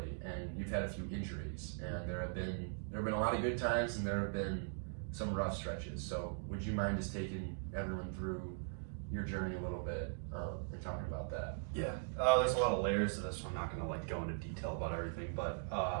and you've had a few injuries, and there have been a lot of good times, and there have been some rough stretches. So would you mind just taking everyone through your journey a little bit and talking about that? Yeah, there's a lot of layers to this, so I'm not going to like go into detail about everything. But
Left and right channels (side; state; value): left; silent; digital silence